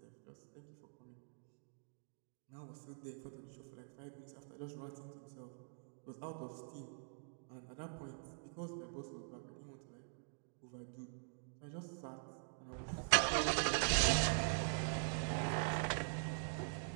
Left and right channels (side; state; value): left; silent; digital silence